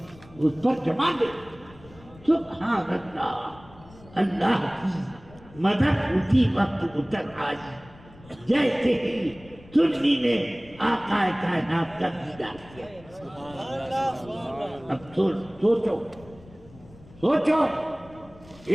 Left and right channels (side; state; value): left; noise; rumble, 22 dB below the sound